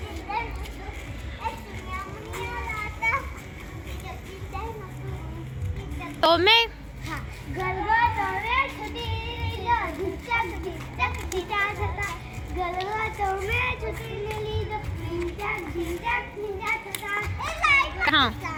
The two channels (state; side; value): identical; both; correlation 1.00